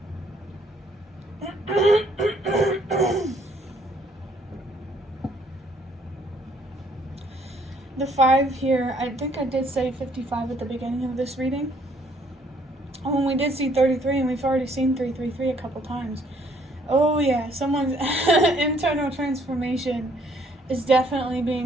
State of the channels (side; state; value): both; normal; correlation 0.65